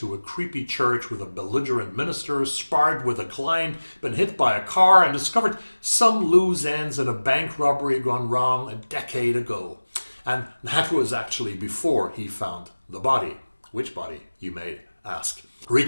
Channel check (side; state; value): both; inverted; correlation -1.00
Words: a creepy church with a belligerent minister, sparred with a client, been hit by a car, and discovered some loose ends in a bank robbery gone wrong a decade ago. And that was actually before he found the body. Which body, you may ask? Read